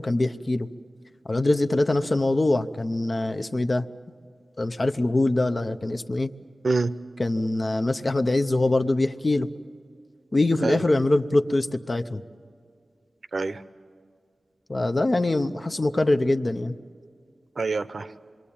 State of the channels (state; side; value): normal; both; correlation 0.97